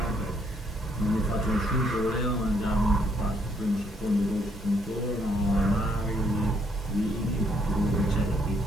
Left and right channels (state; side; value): normal; both; correlation 0.71